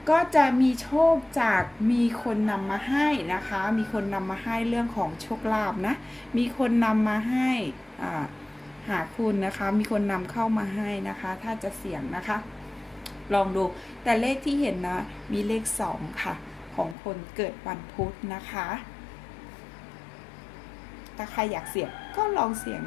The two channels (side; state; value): right; drops out; at 16.9 s